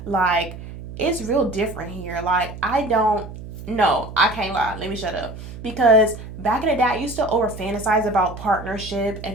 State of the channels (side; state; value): right; noise; hum, 12 dB below the sound